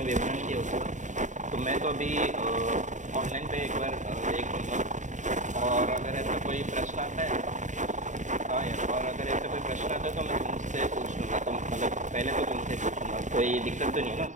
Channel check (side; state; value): left; late; 0.36 ms